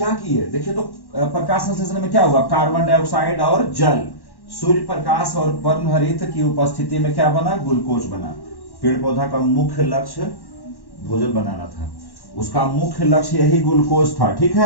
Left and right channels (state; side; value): late; right; 1.1 ms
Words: किए देखिए, तो प्रकाश संश्लेषण में क्या हुआ, कार्बन डाइऑक्साइड और जल, सूर्य प्रकाश और पर्णहरित की उपस्थिति में क्या बना, ग्लूकोज बना। पेड़ पौधा का मुख्य लक्ष्य भोजन बनाना था, उसका मुख्य लक्ष्य यही ग्लूकोज था, ठीक